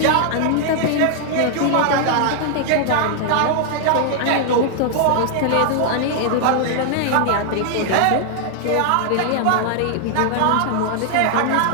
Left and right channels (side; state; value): both; different; correlation 0.00